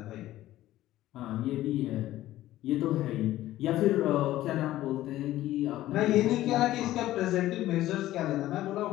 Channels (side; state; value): right; quieter; 14.8 dB